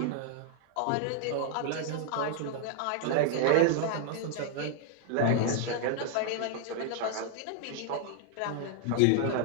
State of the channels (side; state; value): both; different; correlation 0.00